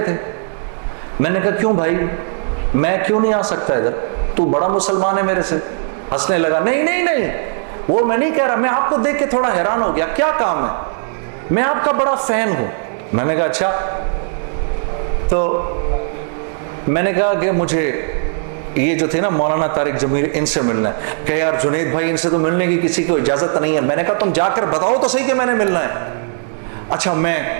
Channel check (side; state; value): left; silent; digital silence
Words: تھے. میں نے کہا کیوں بھائی میں کیوں نہیں آ سکتا ادھر؟ تو بڑا مسلمان ہے میرے سے. ہنسنے لگا. نہیں وہ میں نہیں کہہ رہا, میں آپ کو دیکھ کے تھوڑا حیران ہو گیا. کیا کام ہے؟ میں آپ کا بڑا فین ہوں. میں نے کہا اچھا. تو میں نے کہا کہ مجھے یہ جو تھے نا مولانا طارق جمیل, ان سے ملنا ہے. کہ یار جنید بھائی ان سے تو ملنے کی کسی کو اجازت نہیں ہے. میں نے کہا تم جا کر بتاؤ تو صحیح کہ میں نے ملنا ہے. اچھا میں